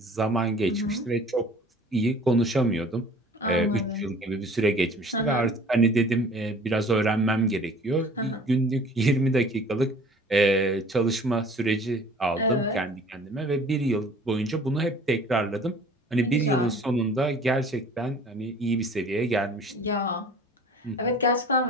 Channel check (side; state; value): both; normal; correlation 0.48